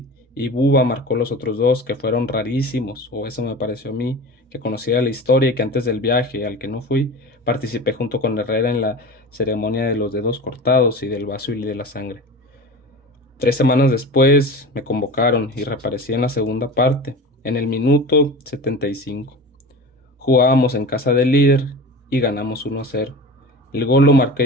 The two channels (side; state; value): both; normal; correlation 0.33